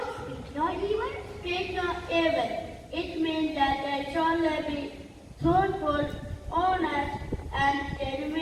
speak no evil? Speak no evil. It means that I shall be truthful, honest, and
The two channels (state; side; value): identical; both; correlation 1.00